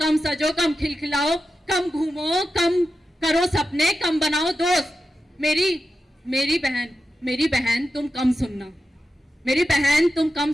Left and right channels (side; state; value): both; normal; correlation 0.91